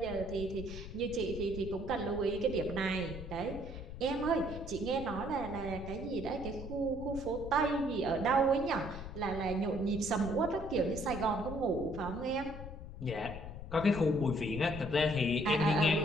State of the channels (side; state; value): left; noise; rumble, 10 dB below the sound